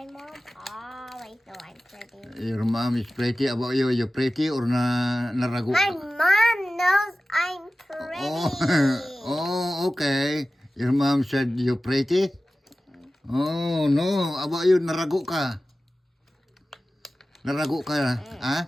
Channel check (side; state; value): both; normal; correlation 0.96